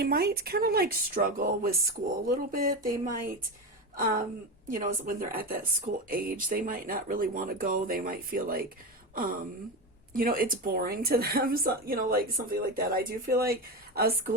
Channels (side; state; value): both; normal; correlation 0.19